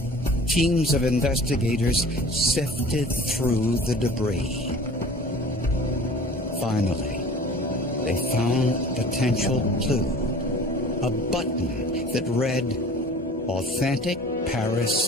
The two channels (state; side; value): normal; both; correlation 0.44